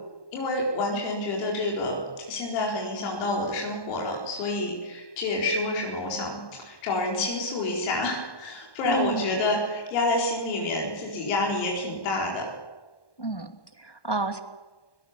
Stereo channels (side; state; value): right; late; 1.1 ms